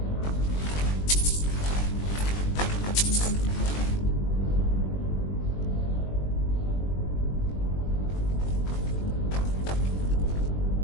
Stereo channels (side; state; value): right; late; 21 ms